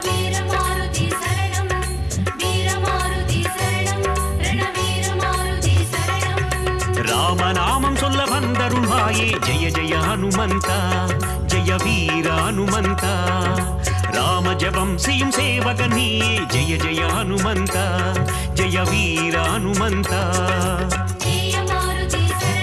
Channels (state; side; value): noise; right; hum, 23 dB below the sound